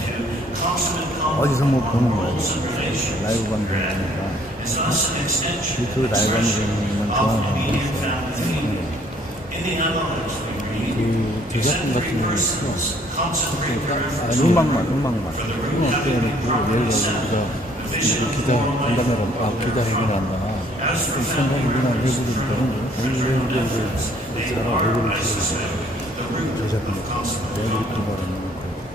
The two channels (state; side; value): normal; both; correlation 0.61